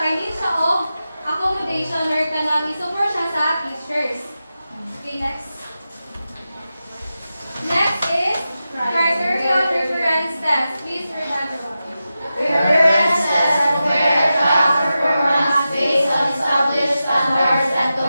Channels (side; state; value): both; inverted; correlation -0.92